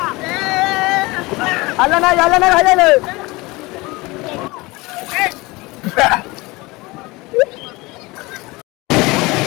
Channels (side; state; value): right; quieter; 22.7 dB